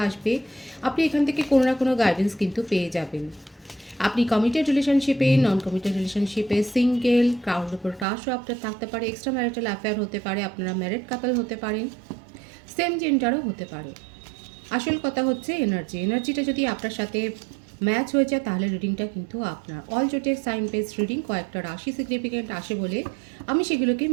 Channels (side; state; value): left; drops out; at 8.1 s